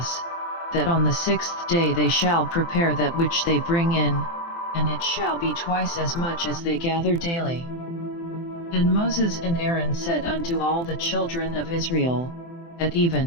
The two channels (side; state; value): right; late; 24 ms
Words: that on the 6th day they shall prepare that which they bring in, and it shall be twice as much as they gather daily. And Moses and Aaron said unto all the children of Israel, At